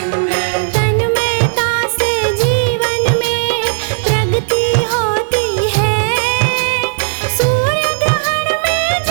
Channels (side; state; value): left; silent; digital silence